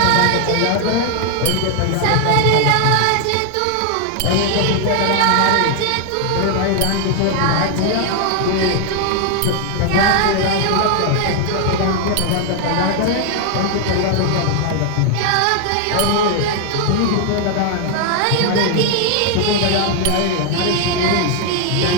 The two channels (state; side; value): different; both; correlation 0.00